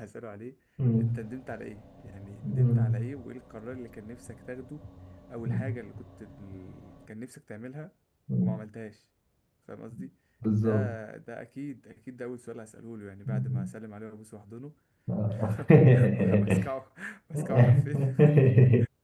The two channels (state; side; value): identical; both; correlation 1.00